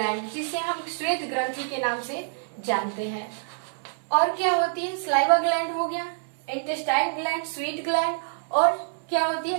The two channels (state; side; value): silent; left; 61 dB below the other